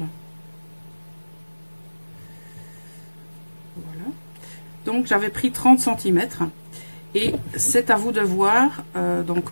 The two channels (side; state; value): both; inverted; correlation -1.00